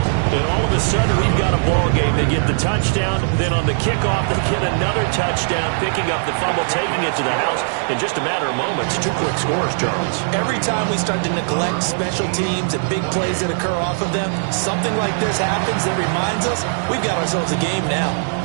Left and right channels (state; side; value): silent; left; digital silence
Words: And all of a sudden, we've got a ball game. They get the touchdown, then on the kickoff, they get another touchdown, picking up the fumble, taking it to the house in just a matter of moments. 2 quick scores, Charles. Every time we start to neglect special teams and big plays that occur off of them, something like this happens that reminds us we've got ourselves a game now.